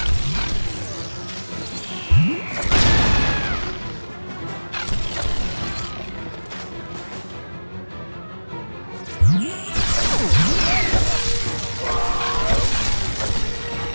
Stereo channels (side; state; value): both; inverted; correlation -1.00